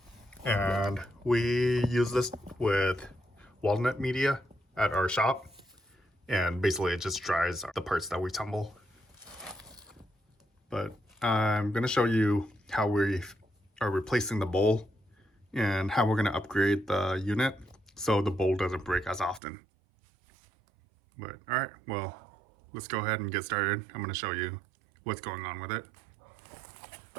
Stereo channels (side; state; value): left; drops out; at 19.4 s